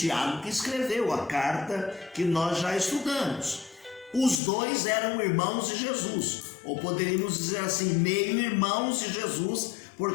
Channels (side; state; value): right; drops out; at 4.4 s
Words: que escreveu a carta que nós já estudamos. Os dois eram irmãos de Jesus, ou poderíamos dizer assim, meio-irmãos de Jesus,